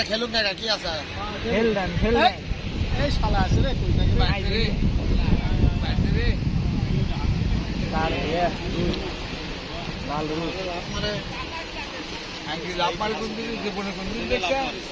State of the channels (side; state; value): both; identical; correlation 1.00